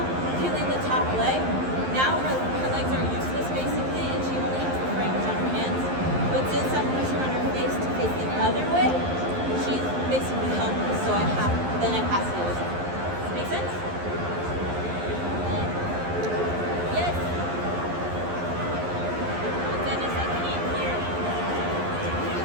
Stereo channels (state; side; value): late; left; 11 ms